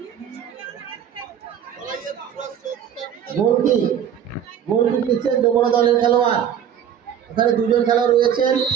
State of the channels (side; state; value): left; quieter; 8.9 dB